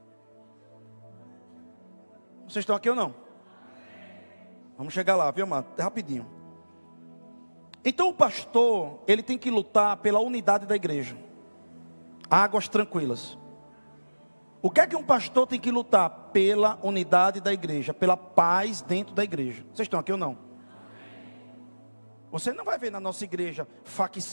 Vocês estão aqui ou não? Vamos chegar lá, viu, amado? Rapidinho. Então o pastor, ele tem que lutar pela unidade da igreja. Águas tranquilas. O que é que um pastor tem que lutar? Pela unidade da igreja, pela paz dentro da igreja. Vocês estão aqui ou não? Você não vai ver na nossa igreja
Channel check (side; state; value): both; inverted; correlation -1.00